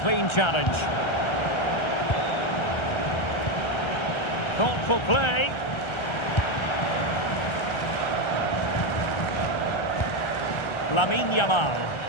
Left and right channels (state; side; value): late; right; 1.3 ms